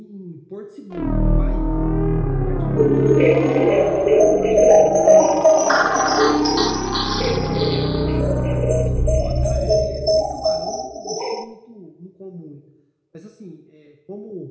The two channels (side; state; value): both; identical; correlation 1.00